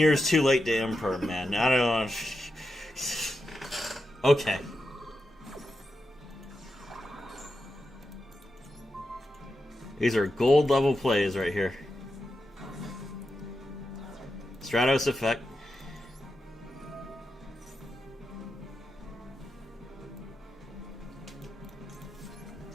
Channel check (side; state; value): both; normal; correlation 0.88